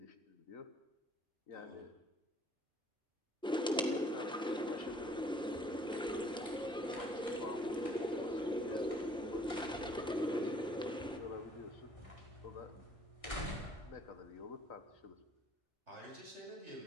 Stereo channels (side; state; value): both; normal; correlation 0.61